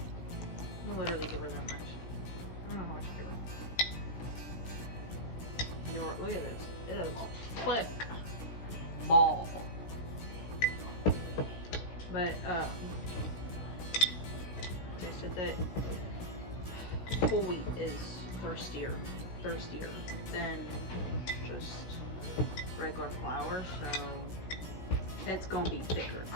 I'll literally give her that much. I don't know how much to give her. Look at this. It is a thick ball. But they said that whole wheat is thirstier than just regular flour, so it's gonna be thicker.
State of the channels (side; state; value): right; late; 17 ms